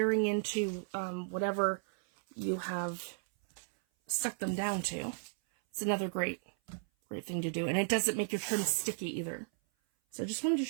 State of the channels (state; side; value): silent; left; 55 dB below the other